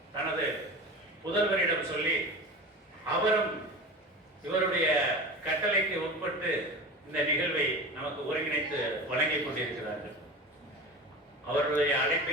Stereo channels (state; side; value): normal; both; correlation 0.31